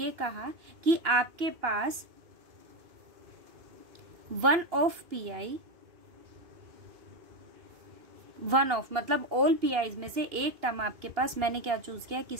कहा कि आपके पास one of pi, one of मतलब ऑल पीआईज में से एक टर्म आपके पास, मैंने क्या चूज किया,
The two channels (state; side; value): late; left; 2.9 ms